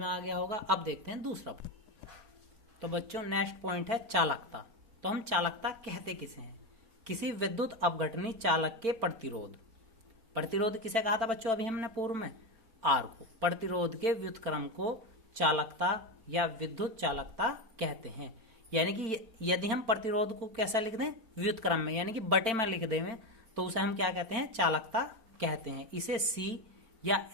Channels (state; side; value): late; left; 4.4 ms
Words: आ गया होगा। अब देखते हैं दूसरा पॉइंट। तो बच्चों नेक्स्ट पॉइंट है चालकता। तो हम चालकता कहते किसे हैं, किसी विद्युत अपघटनी चालक के प्रतिरोध। प्रतिरोध किसे कहा था बच्चों, अभी हमने पूर्व में, R को। प्रतिरोध के व्युत्क्रम को चालकता या विद्युत चालकता कहते हैं। यानी कि यदि हम प्रतिरोध को कैसा लिख दें, व्युत्क्रम में, यानी कि बटे में लिख दें, तो उसे हम क्या कहते हैं, चालकता कहते हैं। इसे C या